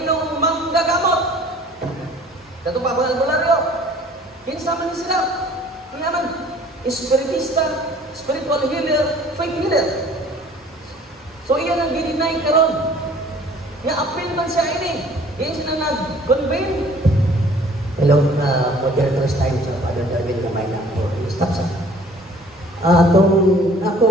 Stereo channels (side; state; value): both; normal; correlation 0.52